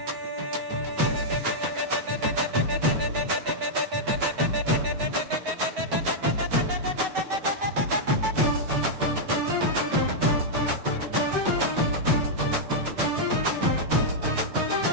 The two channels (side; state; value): left; late; 7.9 ms